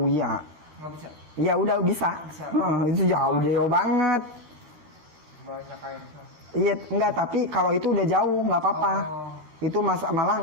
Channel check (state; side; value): late; left; 13 ms